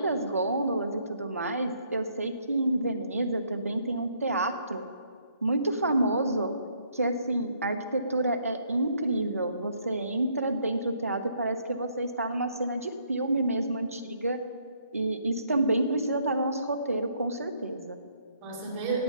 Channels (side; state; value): both; inverted; correlation -0.68